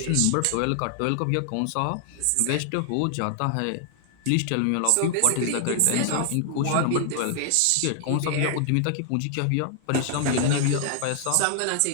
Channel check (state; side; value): different; both; correlation 0.00